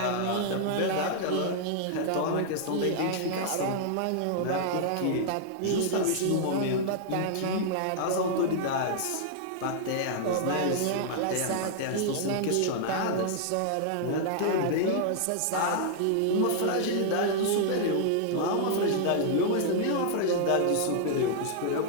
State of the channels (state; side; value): different; both; correlation -0.01